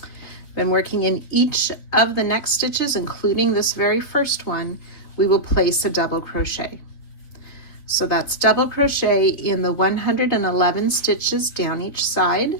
Then working in each of the next stitches, including this very first one, we will place a double crochet. So that's double crochet in the 111 stitches down each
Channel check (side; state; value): right; late; 3.6 ms